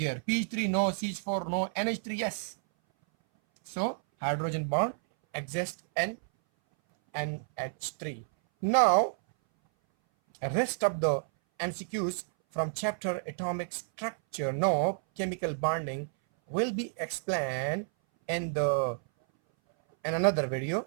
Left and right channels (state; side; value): silent; left; 58 dB below the other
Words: pH3 no, CH4 no, NH3 yes. So hydrogen bond exists in NH3. Now, rest of the MCQs from chapter atomic structure, no, chemical bonding, will be explained in another video.